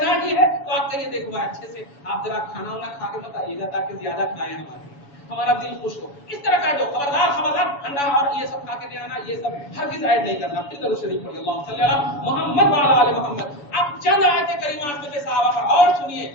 ہی ہے تو آپ کہیے دیکھو اچھے سے آپ ذرا کھانا وانا کھا کے مت آئیے گا تاکہ زیادہ کھائیں ہمارا دل خوش ہو، اس طرح کا جو خبردار خبردار انڈا اور یہ سب کھا کے نہیں آنا، یہ سب ہرگز ایڈ نہیں کرنا۔ پھر درود شریف پڑھیے، اللہم صلی علی محمد وعلی آل محمد۔ اب چند آیت کریمات میں صحابہ پر اور سنیے،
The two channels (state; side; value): late; right; 7.0 ms